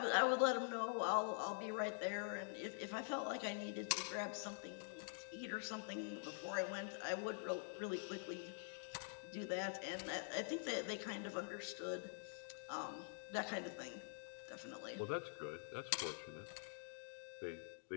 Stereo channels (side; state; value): right; silent; digital silence